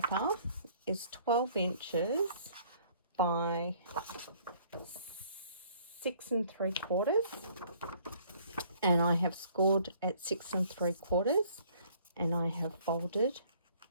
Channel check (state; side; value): inverted; both; correlation -0.58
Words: is 12 inches by 6 3/4. And I have scored at 6 3/4. And I have folded